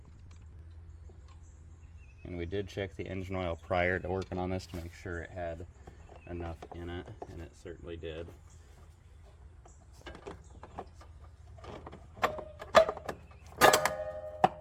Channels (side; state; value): both; identical; correlation 1.00